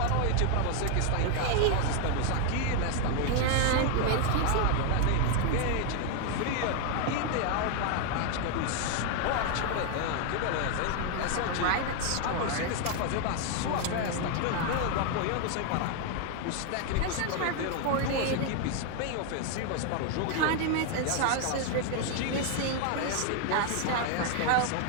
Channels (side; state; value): both; different; correlation 0.00